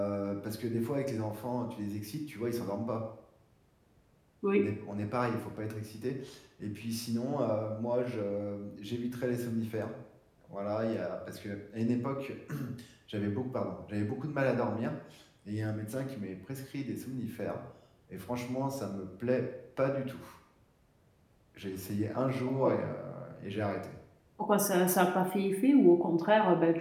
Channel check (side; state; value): both; identical; correlation 1.00